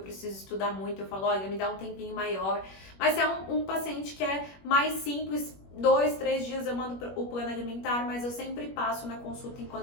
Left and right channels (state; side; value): late; right; 21 ms